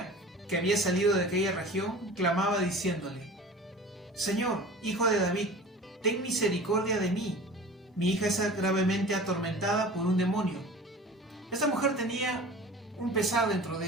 que había salido de aquella región clamaba diciéndole: Señor, hijo de David, ten misericordia de mí, mi hija es gravemente atormentada por un demonio. Esta mujer tenía un pesar dentro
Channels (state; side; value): normal; both; correlation 0.39